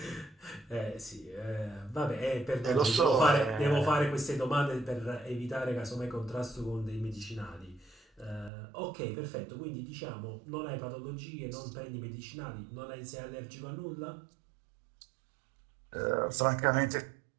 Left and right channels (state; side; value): drops out; left; at 8.5 s